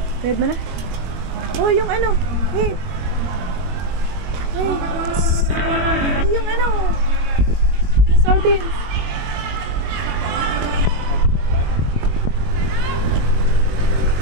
Read mo na? Oh, yung hey! Hey! Yung yung sardines.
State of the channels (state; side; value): late; left; 21 ms